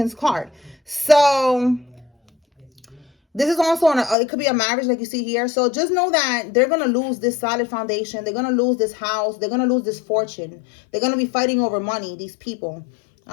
card. So this is also it could be a marriage like you see here. So just know that they're going to lose this solid foundation. They're going to lose this house. They're going to lose this fortune. They're going to be fighting over money, these people.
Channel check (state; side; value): drops out; right; at 4.2 s